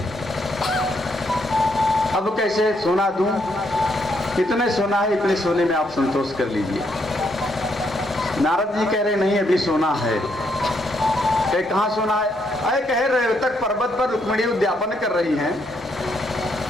अब कैसे सोना दूं? इतने सोना है, इतने सोने में आप संतोष कर लीजिए। नारद जी कह रहे नहीं अभी सोना है। कहाँ सोना है? अरे कह रहे तक पर्वत पर रुक्मिणी उद्यापन कर रही हैं,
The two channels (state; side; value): normal; both; correlation 0.75